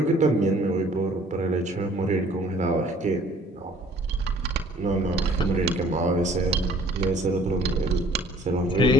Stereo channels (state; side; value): normal; both; correlation 0.55